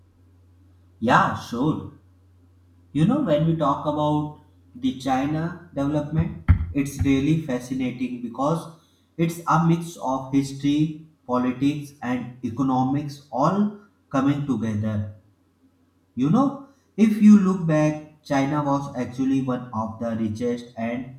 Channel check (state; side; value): identical; both; correlation 1.00